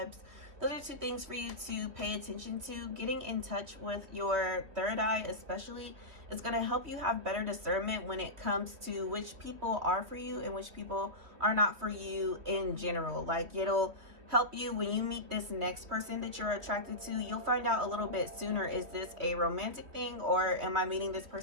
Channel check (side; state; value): left; late; 3.0 ms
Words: Those are 2 things for you to pay attention to. Getting in touch with your third eye especially is going to help you have better discernment when it comes to which people are for you and which people are not for you in general. Like it'll help you when you meet this next person that you're attracted to. You'll find out a little bit sooner, is this a romantic thing or am I meeting this